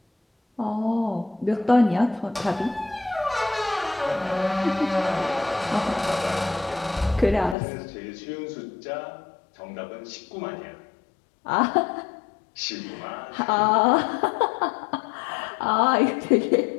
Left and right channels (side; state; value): right; drops out; at 7.6 s